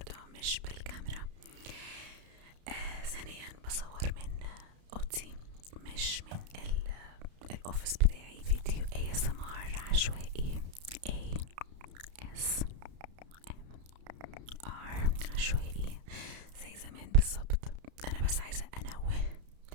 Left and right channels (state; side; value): late; left; 32 ms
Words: مش بالكاميرا. ثانيا بصور من اوضتي مش من الاوفيس بتاعي. فيديو ASMR عشوائي، ASMR عشوائي زي زمان بالظبط. انا بس عايزه انوه